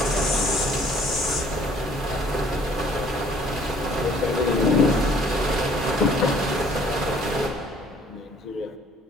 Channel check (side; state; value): both; normal; correlation 0.58